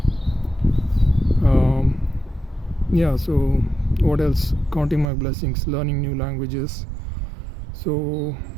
Yeah, so what else? Counting my blessings, learning new languages. So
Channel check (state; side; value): drops out; left; at 5.1 s